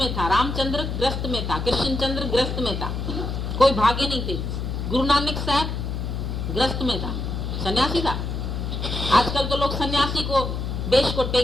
था, रामचंद्र ग्रस्त में था, कृष्णचंद्र ग्रस्त में था, कोई भागे नहीं थे। गुरु नानक साहब ग्रस्त में था, सन्यासी था। आजकल तो लोग सन्यासी को वेश को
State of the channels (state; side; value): noise; left; hum, 3 dB below the sound